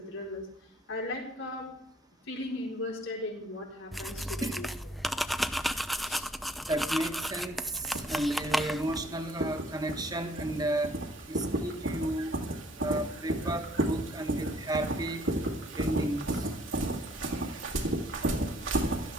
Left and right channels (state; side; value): normal; both; correlation 0.60